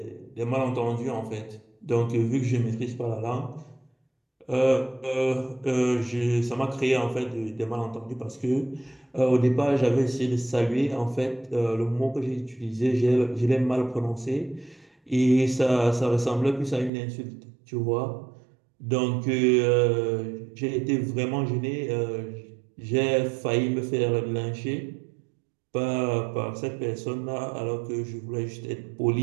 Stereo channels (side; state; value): left; drops out; at 16.9 s